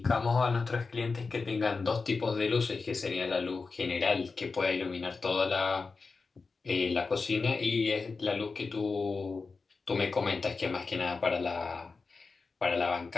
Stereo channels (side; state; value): right; quieter; 4.3 dB